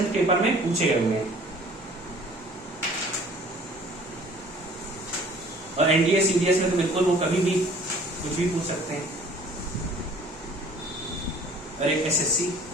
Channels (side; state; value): both; normal; correlation 0.52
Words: पेपर में पूछे गए हुए हैं। और एनडीए सीडीएस में तो बिल्कुल वो कभी भी कुछ भी पूछ सकते हैं। और एक एसएससी